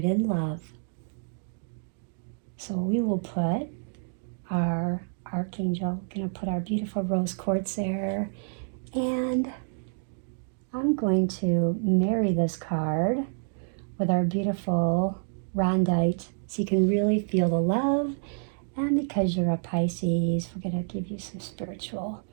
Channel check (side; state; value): left; silent; digital silence